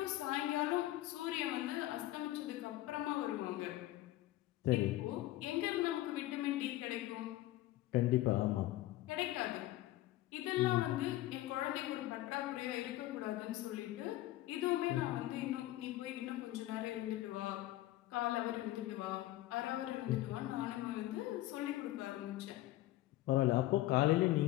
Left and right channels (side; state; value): right; quieter; 15.9 dB